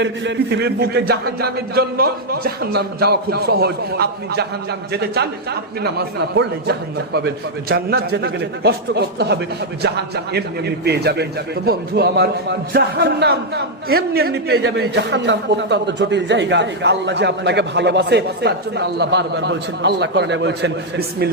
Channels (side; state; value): both; normal; correlation -0.01